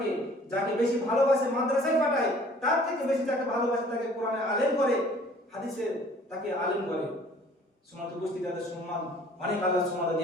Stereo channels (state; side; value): normal; both; correlation 0.53